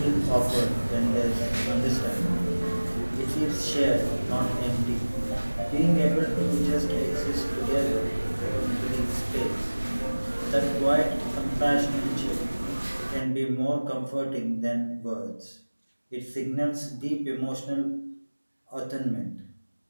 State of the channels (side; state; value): both; inverted; correlation -1.00